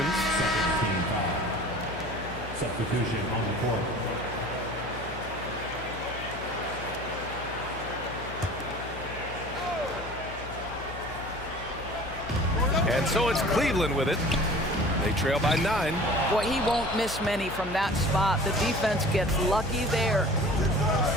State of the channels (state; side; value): noise; left; hum, 12 dB below the sound